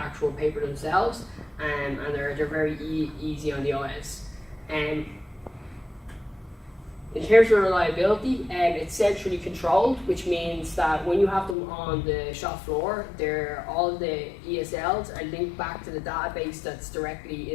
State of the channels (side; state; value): right; drops out; at 11.6 s